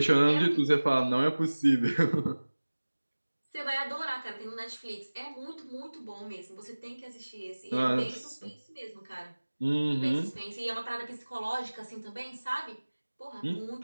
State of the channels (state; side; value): inverted; both; correlation -1.00